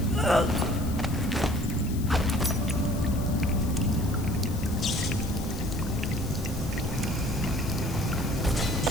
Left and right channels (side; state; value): left; noise; hiss, 15 dB below the sound